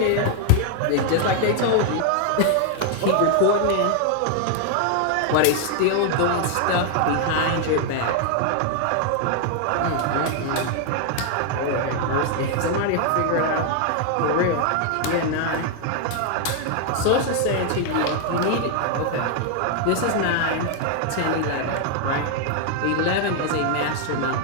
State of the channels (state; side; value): different; both; correlation 0.00